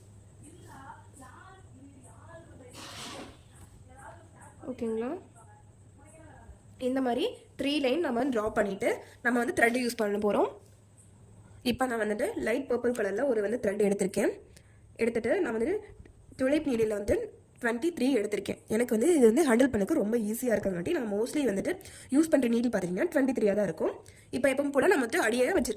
ஓகேங்களா, இந்த மாதிரி 3 லைன் நம்ம ட்ரா பண்ணிவிட்டு நம்ம வந்து த்ரெட் யூஸ் பண்ண போகிறோம். இப்போ நான் வந்துட்டு லைட் பர்பிள் கலரில் ஒரு வந்து த்ரெட் எடுத்திருக்கேன். எடுத்துகிட்டு நான் வந்துட்டு துளைப் நீடில் வந்து 23 எடுத்திருக்கேன். எனக்கு வந்து இது வந்து ஹேண்டில் பண்ணக்கு ரொம்ப ஈஸியாக இருக்கிறங்காட்டி நான் மோஸ்ட்லி வந்துட்டு யூஸ் பண்ணுற நீடில் பார்த்தீங்கன்னா 23 தான் இருக்கும். இப்போ எப்பவும் கூட நான் வந்து அடியே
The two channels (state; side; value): identical; both; correlation 1.00